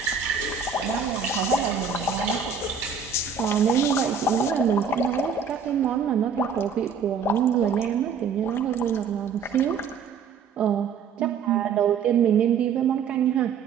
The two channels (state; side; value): quieter; left; 6.2 dB